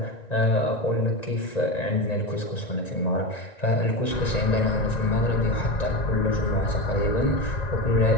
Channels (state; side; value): late; right; 1.9 ms